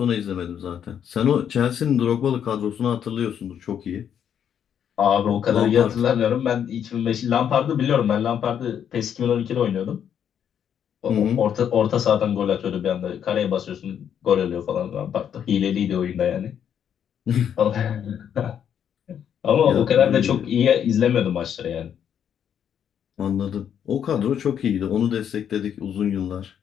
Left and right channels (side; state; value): right; quieter; 8.8 dB